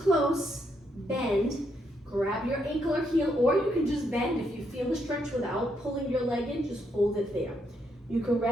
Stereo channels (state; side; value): normal; both; correlation 0.77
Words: bend, grab your ankle or heel, or you can just bend if you feel the stretch without pulling your leg in, just hold it there. You can